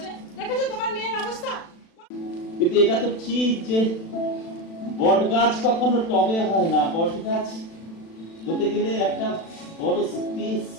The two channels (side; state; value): right; late; 36 ms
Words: দেখেছো তোমার মেয়ের অবস্থা? কিন্তু এটা তো ঠিক যে বট গাছ কখনো টবে হয় না, বট গাছ হতে গেলে একটা বড় স্পেস